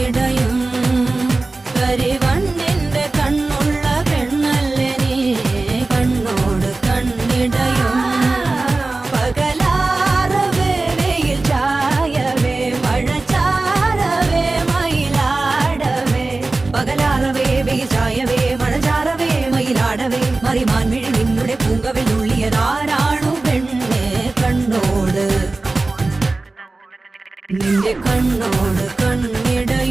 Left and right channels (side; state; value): left; quieter; 3.3 dB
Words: കരിവണ്ണിന്റെ കണ്ണുള്ള പെണ്ണല്ലേ നീ കണ്ണോട് കണ്ണിടയും പകലാറവേ വെയിൽ ചായവേ മഴ ചാരവേ മയിലാടവേ പകലാറവേ വെയിൽ ചായവേ മഴ ചാരവേ മയിലാടവേ മറിമാൻ മിഴി നിന്നുടെ പൂങ്കവിൽ നുള്ളിയതാരാണു പെണ്ണെ കണ്ണോട് നിന്റെ കണ്ണോട്